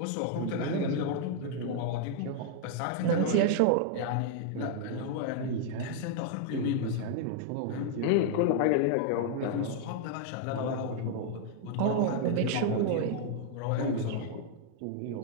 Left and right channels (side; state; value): both; different; correlation 0.00